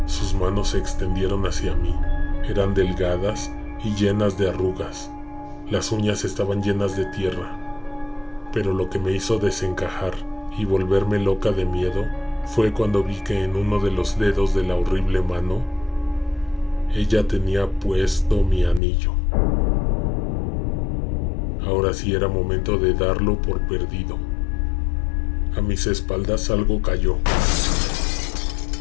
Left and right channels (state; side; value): drops out; right; at 18.8 s